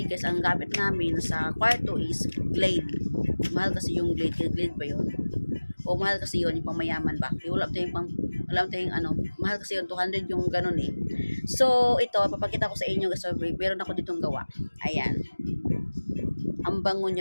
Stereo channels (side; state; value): both; inverted; correlation -1.00